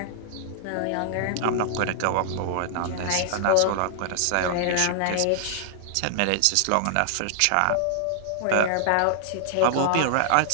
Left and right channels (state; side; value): different; both; correlation 0.00